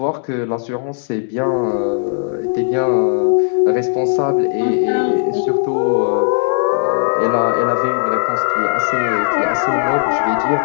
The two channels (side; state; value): right; silent; digital silence